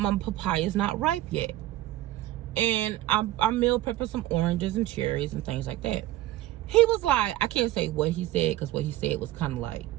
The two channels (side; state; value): left; quieter; 15.6 dB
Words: my papaya is not ripe yet. And I'm meal prepping some oranges and cherries and things like that. He was like, I can't say what he said because what he said was kind of like